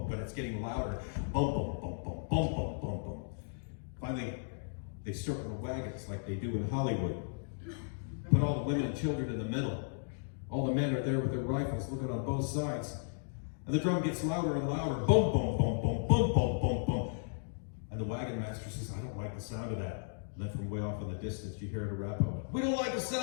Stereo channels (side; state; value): right; silent; digital silence